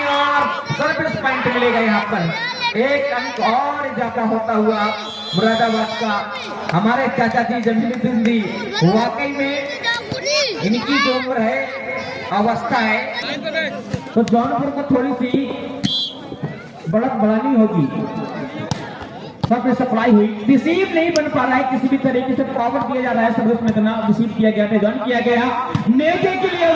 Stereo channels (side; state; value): both; identical; correlation 1.00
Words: और सर्विस पॉइंट मिलेगा यहाँ पर। 1 अंक और इजाफा होता हुआ मुरादाबाद का। हमारे चाचा जी जमीरुद्दीन जी, वाकई में इनकी जो उम्र है अवस्था है, तो जौनपुर को थोड़ी सी बढ़त बढ़ानी होगी। सब में सप्लाई हुई, रिसीव नहीं बन पा रहा है, किसी भी तरीके से पावर दिया जा रहा है, सर्विस में इतना रिसीव किया गया था, जॉइन किया गया। नेकी के लिए